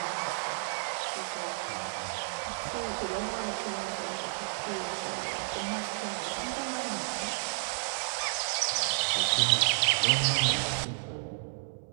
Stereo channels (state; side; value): silent; left; 57 dB below the other